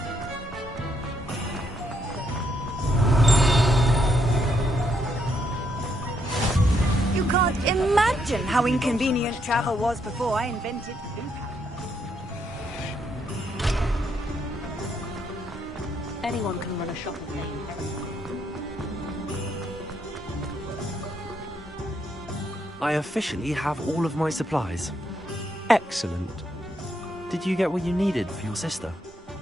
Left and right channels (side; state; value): both; normal; correlation 0.75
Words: You can't imagine how inconvenient travel was before I invented food. Anyone can run a shop with me. I officially have all of my supplies. Excellent. Did you get what you needed for your sister?